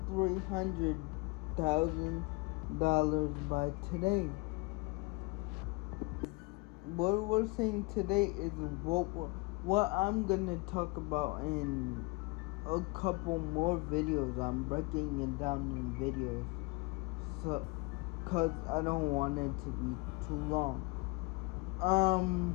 $300,000 by today. What we're saying today is what I'm gonna talk about in a couple more videos. I'm breaking it down in videos, so cause I don't want it to be too long.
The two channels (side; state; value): right; quieter; 26.0 dB